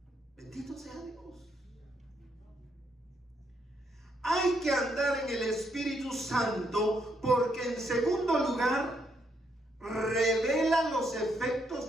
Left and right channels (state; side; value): normal; both; correlation 0.75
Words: Bendito sea Dios. Hay que andar en el Espíritu Santo porque, en segundo lugar, revela los